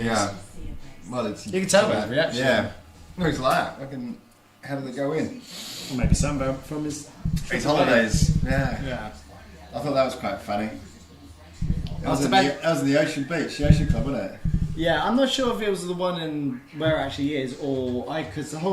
Yeah. Well, it's. You can tell by his reaction. Yeah. No, he's like that. How did they go in? Or maybe some from his Holidays. Yeah. Yeah. I thought that was quite funny. That was in the Ocean Beach, the Ocean Club, wasn't it? Yeah, I'm not sure if it was the one in where it actually is, or because the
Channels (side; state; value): both; identical; correlation 1.00